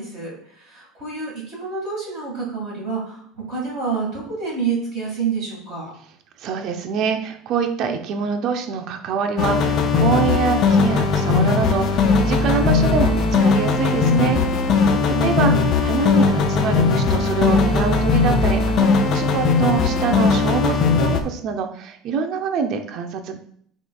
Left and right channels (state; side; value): normal; both; correlation 0.31